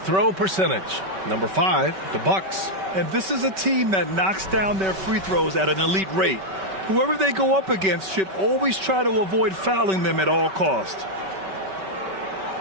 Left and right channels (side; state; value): left; late; 5.2 ms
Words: percentage. Number 5, the Bucks. And this is a team that knocks down their free throws at an elite rate. Whoever they go up against should always try to avoid fouling them at all costs.